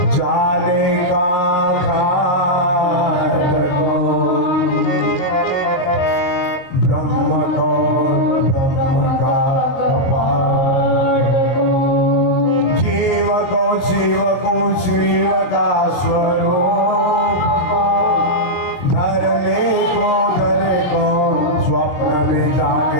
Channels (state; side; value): late; right; 23 ms